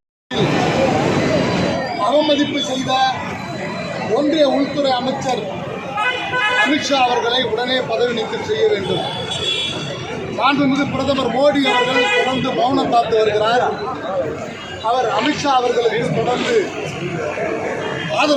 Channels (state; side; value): identical; both; correlation 1.00